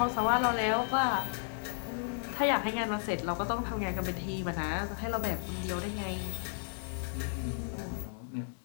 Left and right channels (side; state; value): right; silent; 55 dB below the other